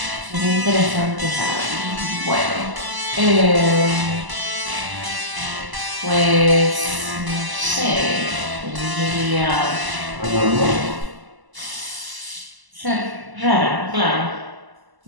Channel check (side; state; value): left; late; 1.0 ms